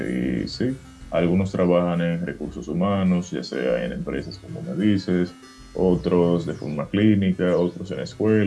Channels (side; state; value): both; identical; correlation 1.00